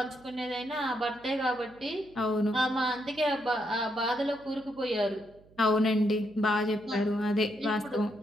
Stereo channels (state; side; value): noise; right; hum, 27 dB below the sound